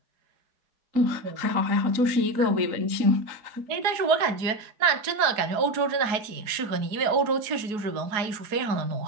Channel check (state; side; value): late; left; 4.7 ms